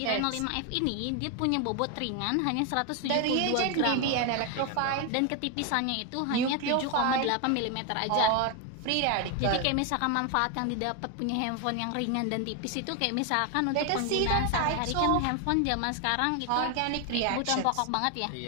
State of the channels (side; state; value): both; different; correlation 0.01